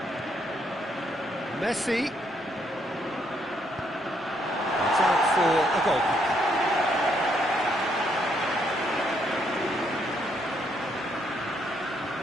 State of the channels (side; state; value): both; normal; correlation 0.73